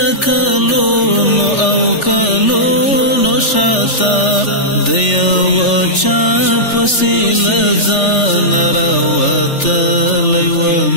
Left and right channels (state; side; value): late; right; 3.4 ms